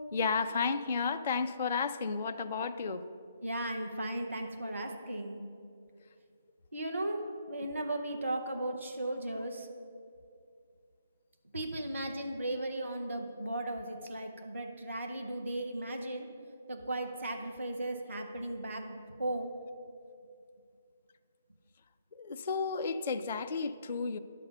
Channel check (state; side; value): inverted; both; correlation -0.70